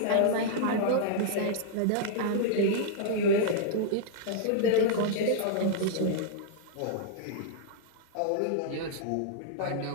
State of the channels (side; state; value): both; different; correlation -0.01